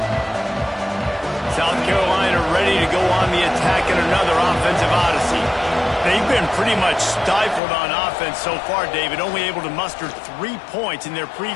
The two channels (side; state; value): right; drops out; at 7.6 s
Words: South Carolina ready to go on the attack in another offensive odyssey. They've been pretty much stifled on offense so far, David, only able to muster 3 points in their